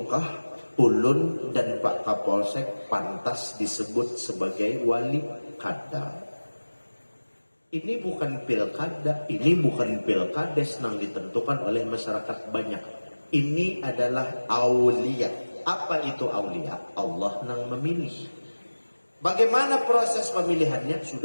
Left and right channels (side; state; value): both; inverted; correlation -1.00